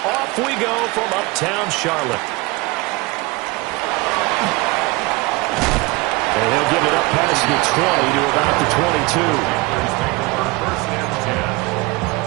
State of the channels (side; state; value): left; quieter; 23.3 dB